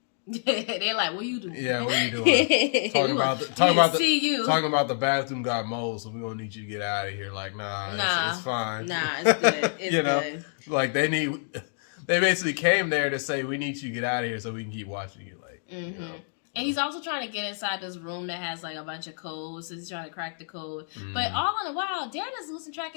They're like, "What are you doing?" Yeah, what are you doing? talking about the bathroom got mold, so we gonna need you to get out of here. Like, nah. It's fine. Nah, it's good. It's you know, good. like they basically came there to say we need you to get out of here so we can keep watching you. Like, you know. And he's also trying to get inside this room that has like a bunch of codes. So he's trying to crack the code. But all in a while, Dan is losing track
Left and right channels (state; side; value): silent; right; digital silence